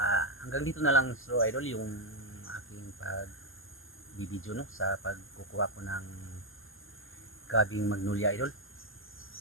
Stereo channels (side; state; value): right; late; 0.59 ms